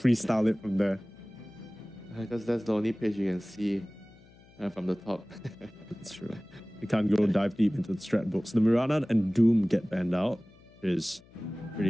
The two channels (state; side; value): noise; left; hum, 26 dB below the sound